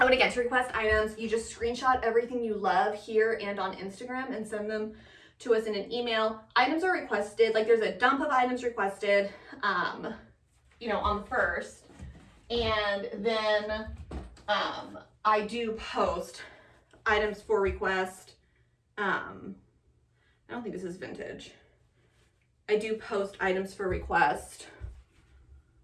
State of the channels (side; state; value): both; identical; correlation 1.00